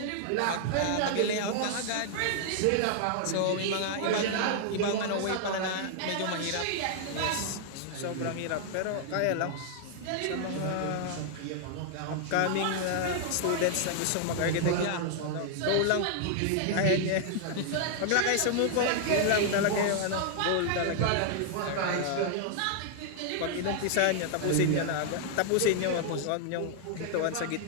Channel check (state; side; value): different; both; correlation 0.00